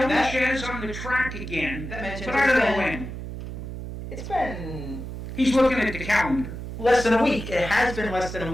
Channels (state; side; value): noise; right; hum, 8 dB below the sound